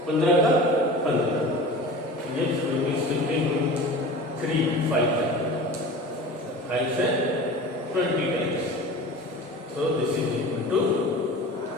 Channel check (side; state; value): both; normal; correlation 0.36